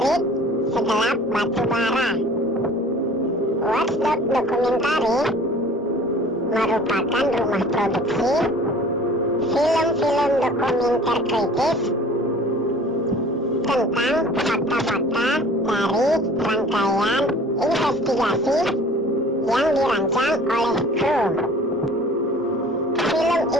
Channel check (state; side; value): normal; both; correlation 0.47